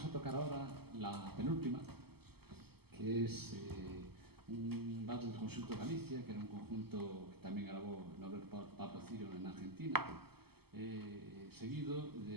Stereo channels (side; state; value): left; late; 0.96 ms